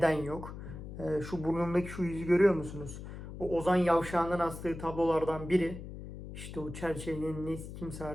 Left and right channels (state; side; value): noise; left; hum, 11 dB below the sound